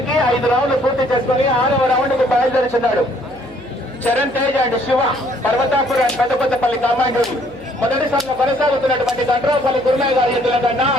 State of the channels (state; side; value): noise; left; hum, 24 dB below the sound